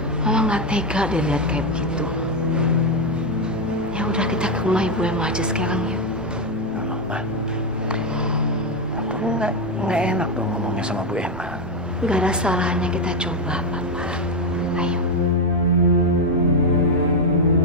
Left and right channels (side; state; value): both; normal; correlation 0.06